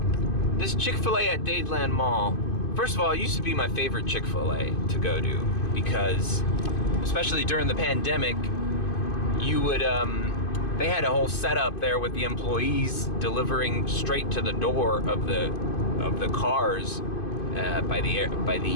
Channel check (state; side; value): late; right; 2.5 ms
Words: This Chick-fil-A at Dadeland Mall, first of all, it used to be my favorite Chick-fil-A to go to because, especially during the pandemic, you would, they had a whole setup there with the employees delivering straight to the door of the cars by the